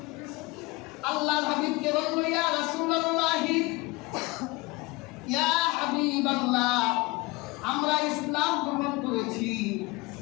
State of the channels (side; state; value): right; quieter; 23.6 dB